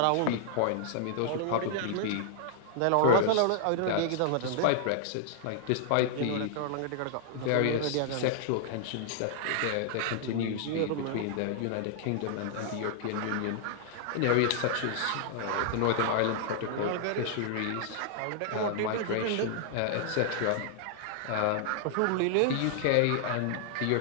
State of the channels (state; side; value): different; both; correlation -0.01